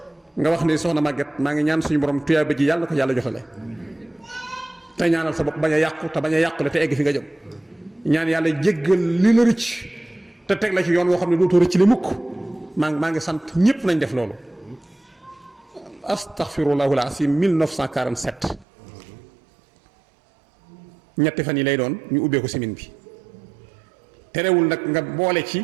nga wax ne soxna Maguette maa ngi ñaan suñu borom tuyaaba ji yàlla na ko yàlla joxale te ñaanal sa bopp bañ a yàqu te bañ a yàqule te egg fi nga jëm ñaan yàlla jéggal li la rëcc te teg la ci yoon woo xam ne dootoo rëcc li mukk maa ngi sant ñëpp nañ def loolu astaghfirullahul asim 1947 ñetti fan yi lay doon ñu ubbee ko semaine bi terewul nag nga boole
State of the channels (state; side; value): drops out; left; at 18.7 s